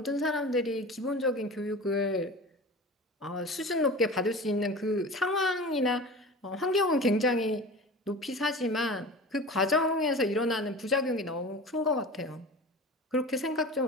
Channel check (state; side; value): normal; both; correlation 0.35